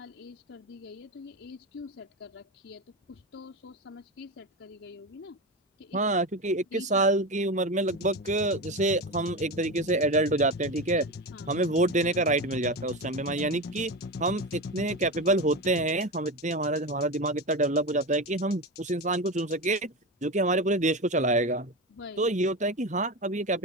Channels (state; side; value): normal; both; correlation 0.21